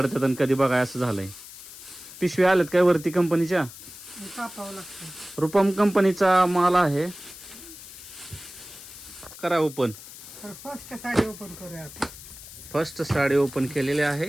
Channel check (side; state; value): left; noise; hiss, 15 dB below the sound